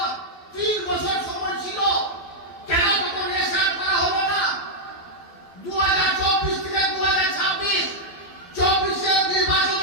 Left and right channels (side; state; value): right; late; 12 ms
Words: 3 বছর সময় ছিল, কেন তখন এসআইআর করা হলো না? 2024 থেকে 2026 24